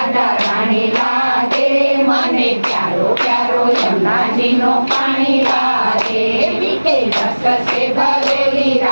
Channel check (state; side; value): inverted; both; correlation -1.00